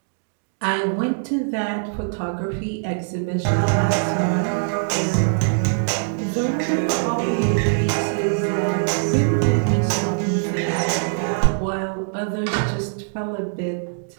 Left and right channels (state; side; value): silent; left; digital silence